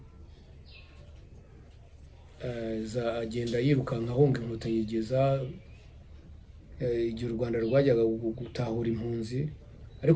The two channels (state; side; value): identical; both; correlation 1.00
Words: agenda yirukanka ahunga inkotanyi yigeza igihe u Rwanda rwajyaga gutahura impunzi.